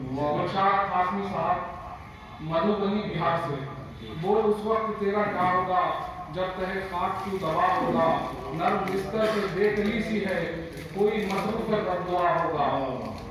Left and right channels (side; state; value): both; identical; correlation 1.00